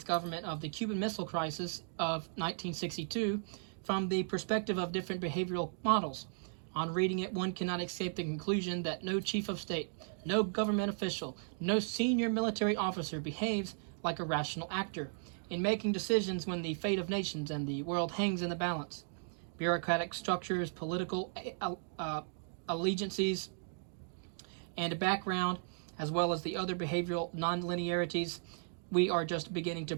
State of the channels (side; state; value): left; silent; digital silence